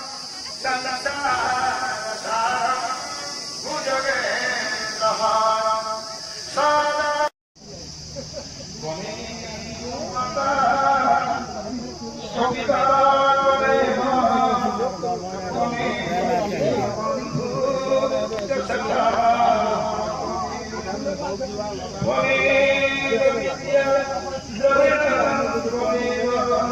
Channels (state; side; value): identical; both; correlation 1.00